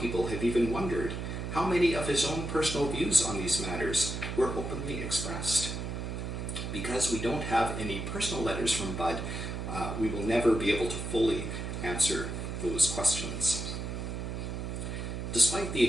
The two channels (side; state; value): right; noise; hum, 4 dB below the sound